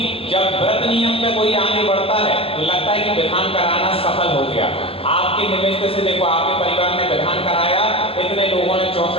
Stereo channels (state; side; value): late; right; 0.27 ms